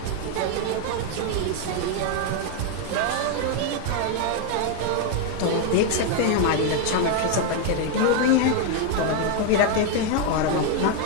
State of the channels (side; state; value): both; different; correlation 0.01